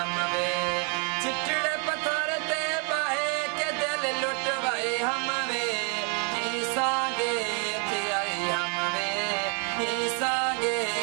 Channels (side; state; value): left; quieter; 38.6 dB